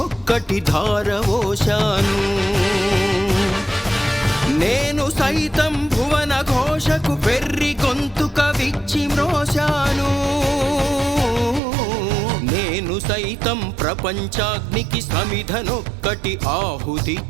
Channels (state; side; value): drops out; left; at 11.6 s